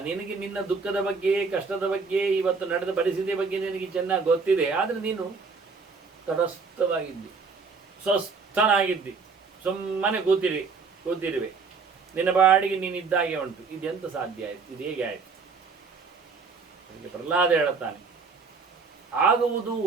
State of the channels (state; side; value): quieter; left; 4.8 dB